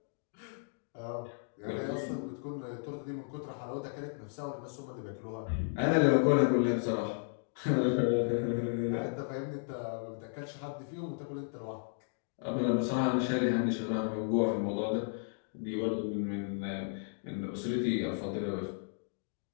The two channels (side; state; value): right; silent; digital silence